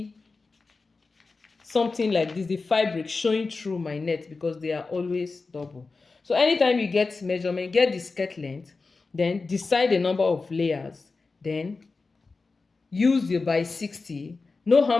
something like this, the fabric showing through my net, because they are always double. So anytime you get measurement, get the skirt length, then decide the number of layers, then use your by 60, know how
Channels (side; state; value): right; quieter; 4.0 dB